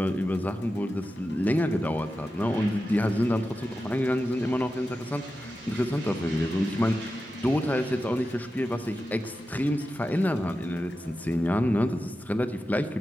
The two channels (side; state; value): both; normal; correlation 0.92